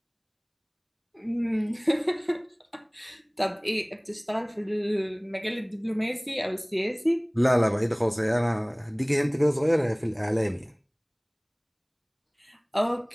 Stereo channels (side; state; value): both; identical; correlation 1.00